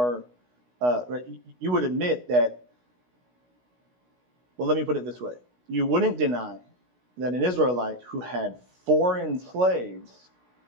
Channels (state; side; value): late; left; 16 ms